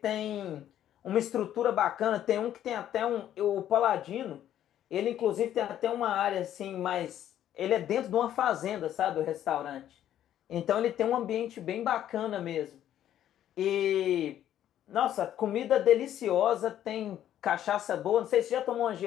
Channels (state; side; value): quieter; right; 11.3 dB